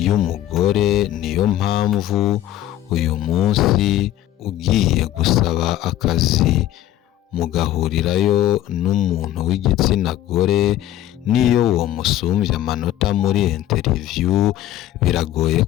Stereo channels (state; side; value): quieter; right; 13.1 dB